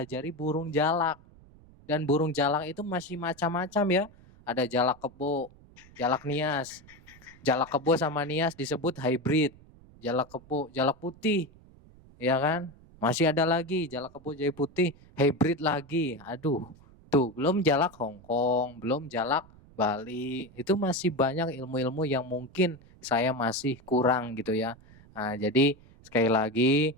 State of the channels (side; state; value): right; noise; rumble, 24 dB below the sound